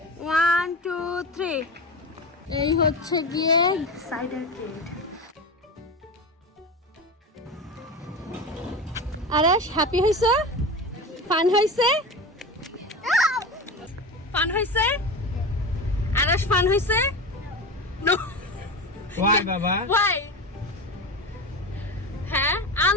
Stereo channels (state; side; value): normal; both; correlation 0.25